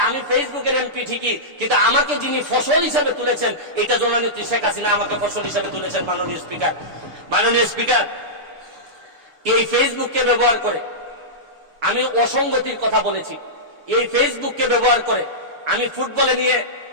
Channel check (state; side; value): late; left; 6.8 ms